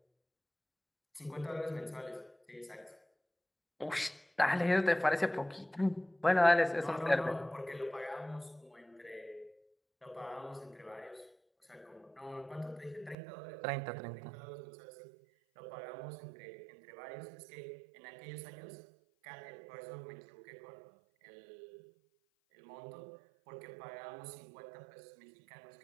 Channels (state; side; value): drops out; left; at 13.2 s